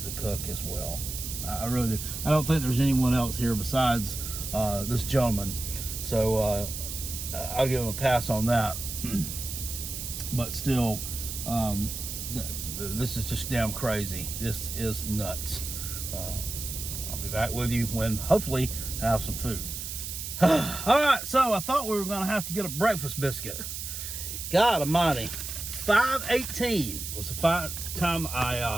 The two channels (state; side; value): noise; right; hiss, 6 dB below the sound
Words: the cook as well. I really do. I don't think there's anyone else here besides this gentleman. So I'll give him a pass on that. But still, this is just damn crazy. This is nuts. I'll be back with you when hopefully I have some food. All right, so I thought we were going to have to get a breakfast biscuit. God almighty. 5:18 was the time